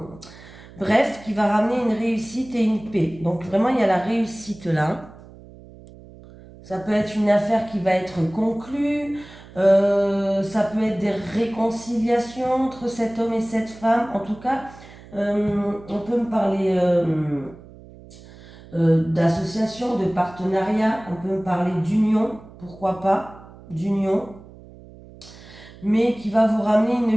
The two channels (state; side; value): noise; right; hum, 20 dB below the sound